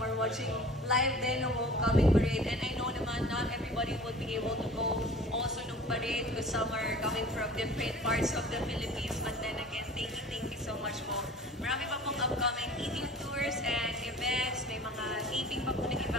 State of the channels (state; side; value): normal; both; correlation 0.44